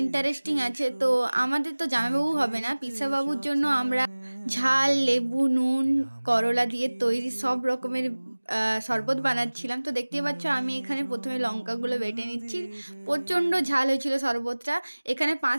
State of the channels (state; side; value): inverted; both; correlation -1.00